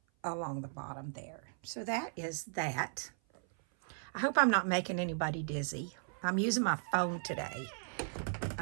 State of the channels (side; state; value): left; silent; 53 dB below the other